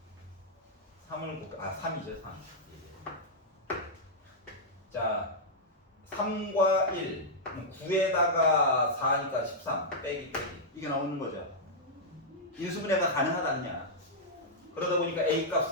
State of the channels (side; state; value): both; normal; correlation -0.08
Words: 3을 3이죠 3. 자 3과 1 9에다가 4니까 13 빼기 이게 나오는 거죠. 인수분해가 가능하다느냐. 그러다 보니까 A